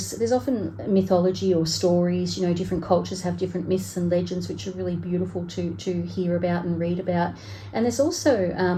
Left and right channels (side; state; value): both; identical; correlation 1.00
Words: there's often mythology or stories, different cultures have different myths and legends, which are really beautiful to hear about and read about. And there's